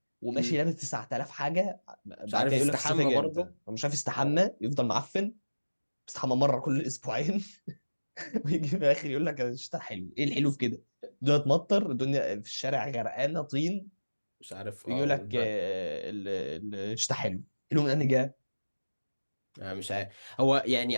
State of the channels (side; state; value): both; inverted; correlation -1.00